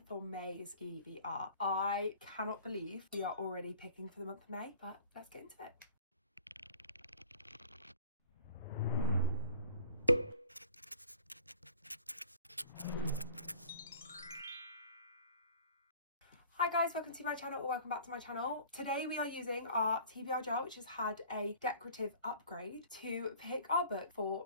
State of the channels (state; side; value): inverted; both; correlation -0.48